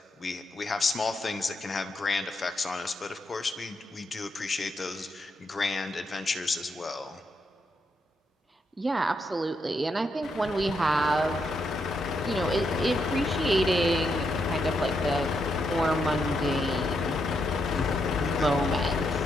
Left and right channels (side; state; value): both; normal; correlation 0.80